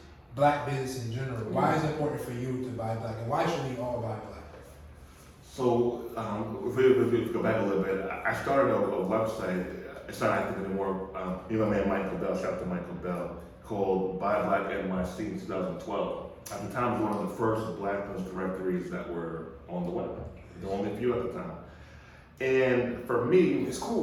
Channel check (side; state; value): both; identical; correlation 1.00